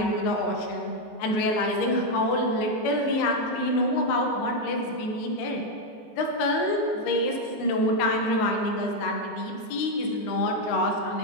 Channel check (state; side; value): late; right; 19 ms